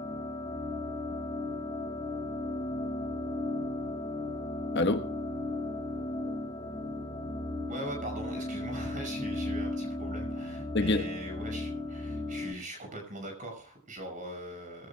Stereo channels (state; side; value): normal; both; correlation 0.58